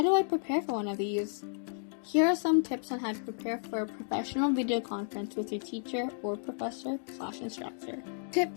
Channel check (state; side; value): silent; right; digital silence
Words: do I prepare for one of these? Here are some tips on how to prepare for a professional video conference with your teacher or professor/instructor.